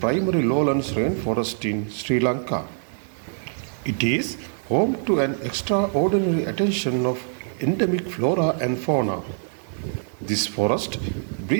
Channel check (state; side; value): silent; left; 57 dB below the other